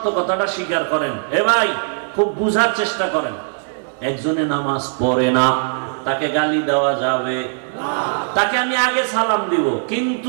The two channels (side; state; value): left; silent; digital silence